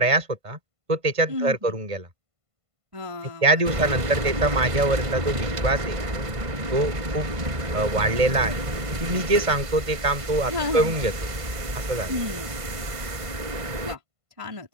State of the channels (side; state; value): left; late; 1.5 ms